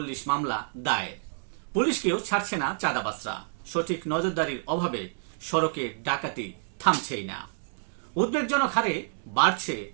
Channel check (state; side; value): silent; left; digital silence